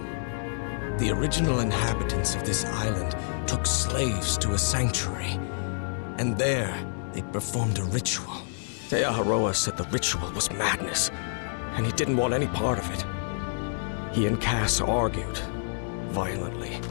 The original inhabitants of this island took slaves to a sanctuary. And there, they performed a ritual. Aotearoa said the ritual was madness, and he didn't want any part of it. He and Cass argued, violently.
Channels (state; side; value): silent; right; digital silence